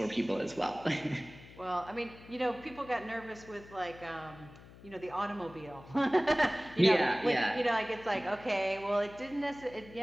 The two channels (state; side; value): noise; left; hum, 19 dB below the sound